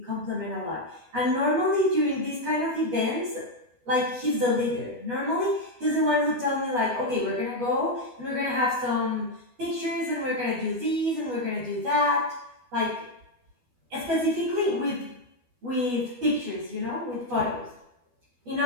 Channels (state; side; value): late; left; 12 ms